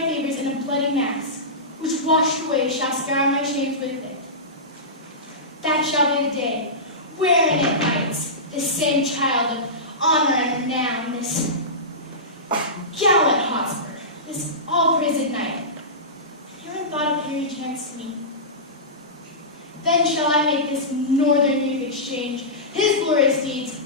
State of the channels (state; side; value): normal; both; correlation -0.18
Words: favors in a bloody mass, which washed away shall scour my shames with it. That shall be the day, wherein it rights, this same child of honor and renown, this gallant Hotspur, this all-praised knight, herein thought of Harry chance to me. Then shall I make this northern youth exchange his glorious deeds